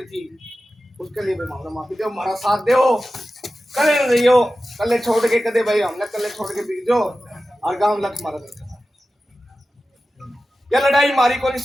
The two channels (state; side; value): normal; both; correlation 0.94